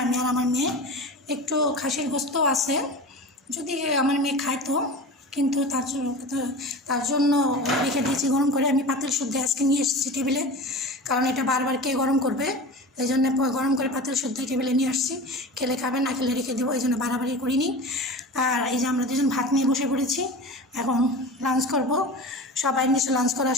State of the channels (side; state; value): both; normal; correlation 0.32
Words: আমি আর আমার মেয়ে। একটু খাসির গোস্তও আছে, যদি আমার মেয়ে খাইতো, কিন্তু তার জন্য রেখে দিয়েছি গরম করে। আমি পাতিল শুদ্ধ আজকে নিয়ে এসেছি টেবিলে, কারণ এটা বারবার কে গরম করবে, এই জন্য গরম করে পাতিল শুদ্ধ টেবিলে নিয়ে আসছি। খেলে খাবে, না খেলে রেখে দেবো, এই জন্য বাড়াবাড়ি করিনি। আর এই যে আমরা দুজন ভাত নিয়ে বসে পড়েছি, এখন লাঞ্চ করব। সবাই নিশ্চয় লাঞ্চ করা